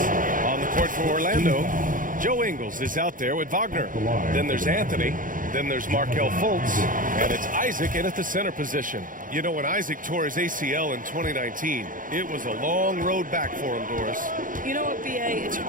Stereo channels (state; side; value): late; left; 0.39 ms